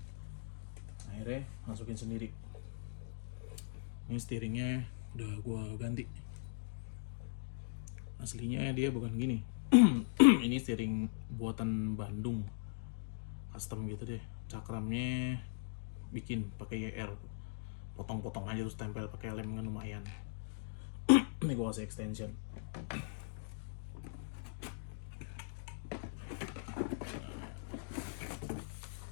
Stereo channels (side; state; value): right; silent; digital silence